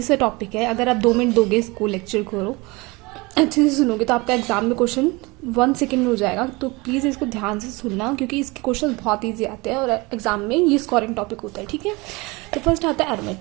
सा टॉपिक है। अगर आप 2 मिनट दोगे इसको लेक्चर को अच्छे से सुनोगे तो आपका एग्जाम में क्वेश्चन 1 सेकेंड में हो जाएगा। तो प्लीज़ इसको ध्यान से सुनना क्योंकि इसके क्वेश्चन बहुत इजी आते हैं और एग्जाम में ये स्कोरिंग टॉपिक होता है। ठीक है, तो फर्स्ट आता है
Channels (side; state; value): left; quieter; 24.8 dB